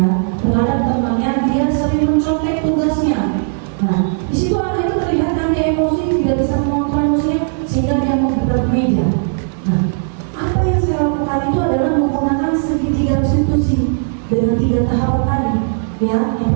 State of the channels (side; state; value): left; silent; digital silence